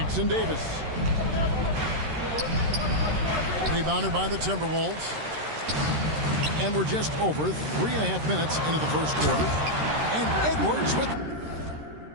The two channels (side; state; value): left; late; 13 ms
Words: Davis. Rebounded by the Timberwolves. And we're just over 3.5 minutes into the first quarter. And Edwards with...